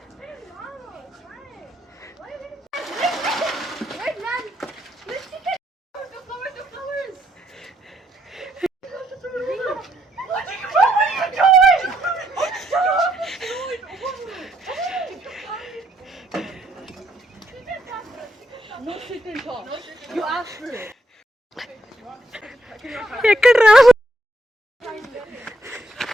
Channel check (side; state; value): both; normal; correlation 0.75